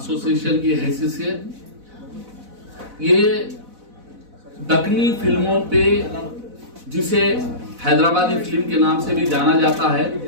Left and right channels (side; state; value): left; late; 4.0 ms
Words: की हैसियत से ये दक्कनी फिल्मों पे, जिसे हैदराबादी फिल्म के नाम से भी जाना जाता है,